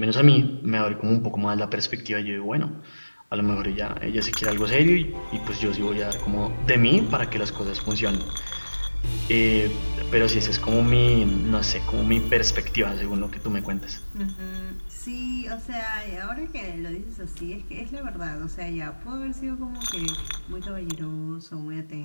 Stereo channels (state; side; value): inverted; both; correlation -1.00